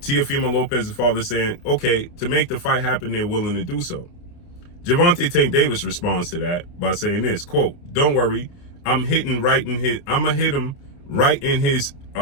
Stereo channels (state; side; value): late; right; 29 ms